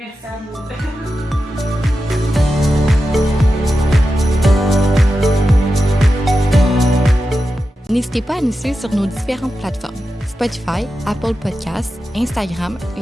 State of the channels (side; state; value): both; normal; correlation 0.91